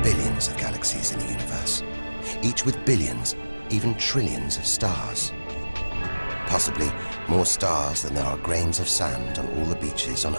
billions of galaxies in the universe, each with billions, even trillions of stars. Possibly more stars than there are grains of sand on all the beaches on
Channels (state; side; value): inverted; both; correlation -1.00